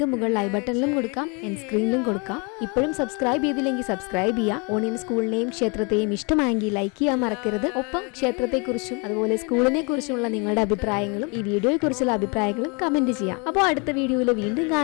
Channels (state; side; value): quieter; right; 32.1 dB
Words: മുകളിൽ ഐ ബട്ടണിലും കൊടുക്കാം, എൻഡ് സ്ക്രീനിലും കൊടുക്കാം. ഇപ്പോഴും സബ്സ്ക്രൈബ് ചെയ്തില്ലെങ്കിൽ സബ്സ്ക്രൈബ് ചെയ്യുക. ഓണിയൻ സ്കൂളിനെയും ക്ഷേത്രത്തെയും ഇഷ്ടമായെങ്കിൽ ലൈക്ക് ചെയ്യാൻ മറക്കരുത്. ഒപ്പം ക്ഷേത്രത്തെക്കുറിച്ചും അതുപോലെ സ്കൂളിനെ കുറിച്ചുള്ള നിങ്ങളുടെ അഭിപ്രായങ്ങളും ഈ വീഡിയോയെ കുറിച്ചുള്ള അഭിപ്രായങ്ങളും കമന്റ് ചെയ്യാം. അപ്പോൾ അടുത്ത വീഡിയോയിൽ വീണ്ടും